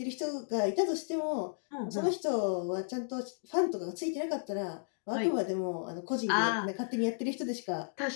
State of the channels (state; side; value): silent; right; digital silence